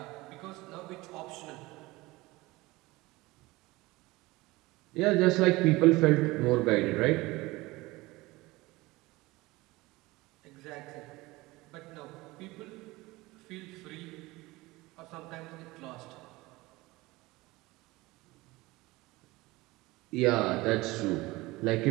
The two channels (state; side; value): quieter; left; 21.0 dB